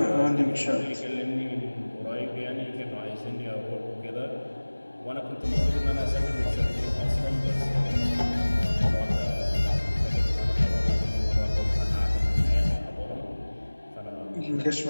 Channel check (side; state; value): both; inverted; correlation -1.00